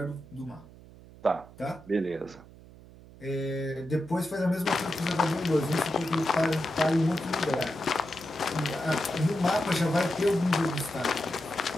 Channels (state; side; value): noise; right; hum, 20 dB below the sound